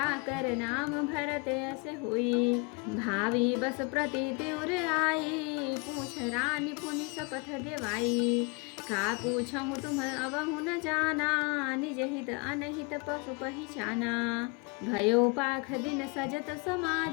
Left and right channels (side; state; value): right; quieter; 29.3 dB